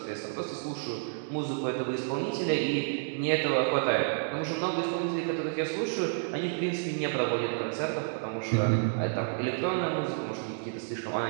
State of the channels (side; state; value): left; silent; digital silence